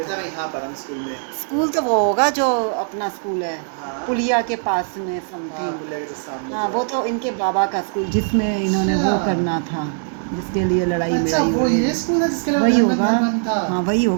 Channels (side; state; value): left; silent; 65 dB below the other